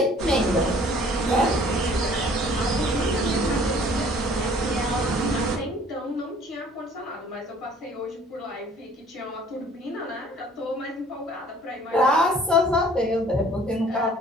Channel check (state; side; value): normal; both; correlation 0.54